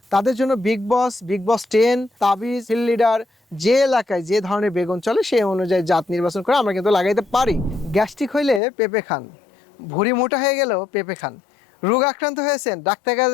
তাদের জন্য বিগ বস 10, তাবিজ, ফিল্ড লিডার, যে এলাকায় যে ধরনের বেগুন চলে সেই অনুযায়ী জাত নির্বাচন করে আমরা কিন্তু লাগাইতে পারি। গ্যাস্ট্রিক হইলে পেঁপে খান, ভুঁড়ি মোটা হয়ে গেলেও পেঁপে খান, রোগ আক্রান্ত হয়েছেন ডাক্তার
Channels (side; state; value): right; drops out; at 8.6 s